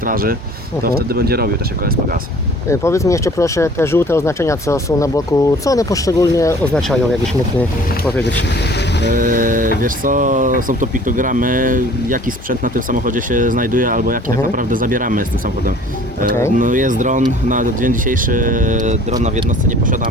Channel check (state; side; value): normal; both; correlation 0.50